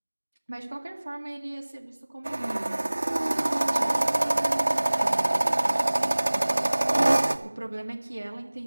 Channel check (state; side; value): inverted; both; correlation -1.00